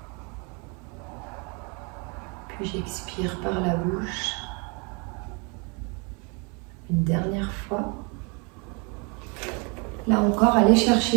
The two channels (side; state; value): left; quieter; 32.7 dB